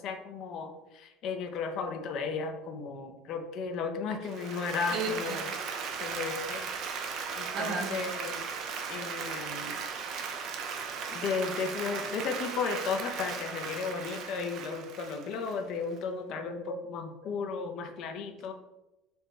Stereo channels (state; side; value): normal; both; correlation 0.41